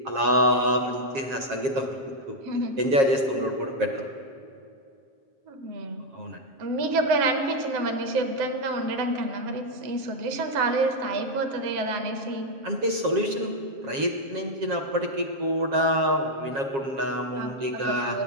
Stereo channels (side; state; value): left; late; 7.4 ms